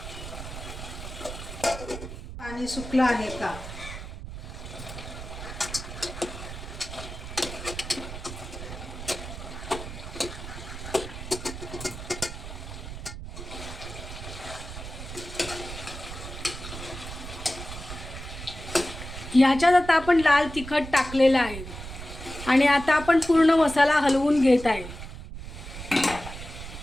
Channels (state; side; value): noise; right; rumble, 10 dB below the sound